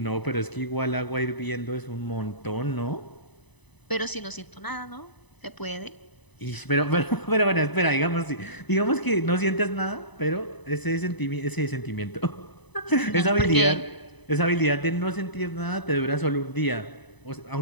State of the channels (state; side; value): late; right; 1.0 ms